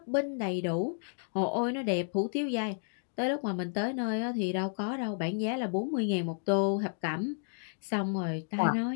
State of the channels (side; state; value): right; silent; digital silence